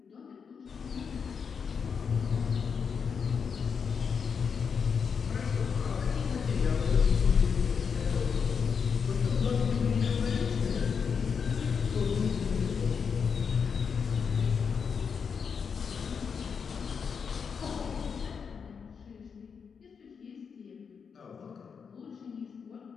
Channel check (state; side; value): quieter; right; 6.3 dB